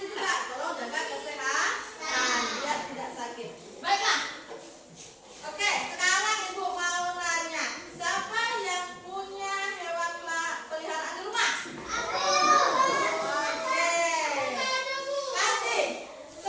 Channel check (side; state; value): both; identical; correlation 1.00